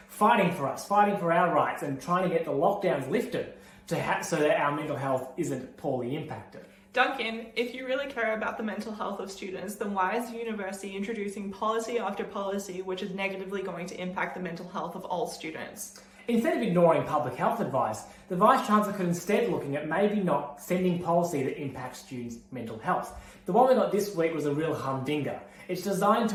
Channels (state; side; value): identical; both; correlation 1.00